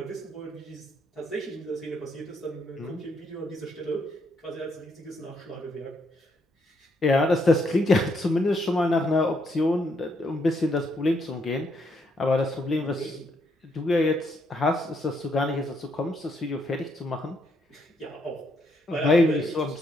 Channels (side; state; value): both; normal; correlation 0.74